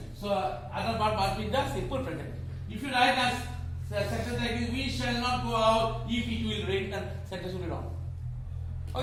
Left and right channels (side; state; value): both; identical; correlation 1.00